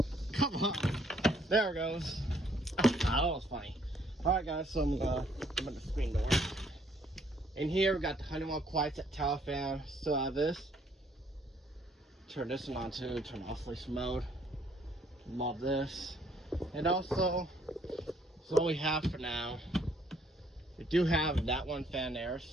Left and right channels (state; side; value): normal; both; correlation 0.66